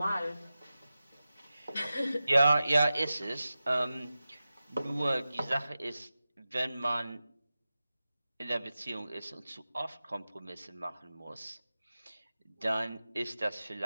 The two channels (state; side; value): inverted; both; correlation -0.94